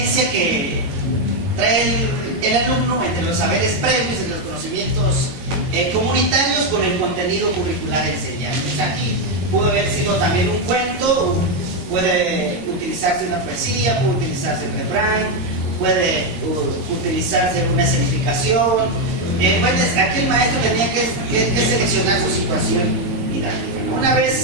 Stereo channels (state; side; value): late; left; 21 ms